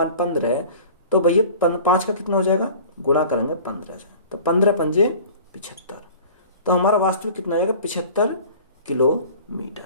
15 है तो भैया 5 का कितना हो जाएगा, गुणा करेंगे 15 से, तो 15 पंजे 75, तो हमारा वास्तविक कितना हो जाएगा, 75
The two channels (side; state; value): both; inverted; correlation -0.44